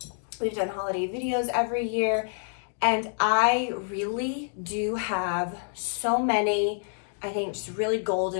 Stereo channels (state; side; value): silent; right; 57 dB below the other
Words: We've done holiday videos every year. And I really do have so many, I think, just really